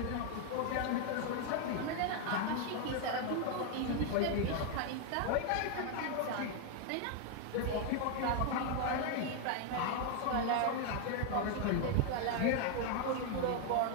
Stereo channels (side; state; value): both; different; correlation 0.01